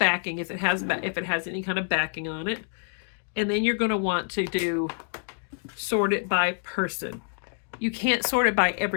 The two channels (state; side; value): silent; right; 60 dB below the other